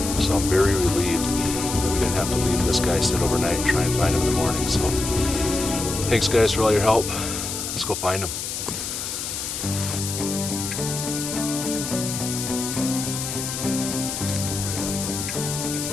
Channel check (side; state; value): left; noise; hiss, 5 dB below the sound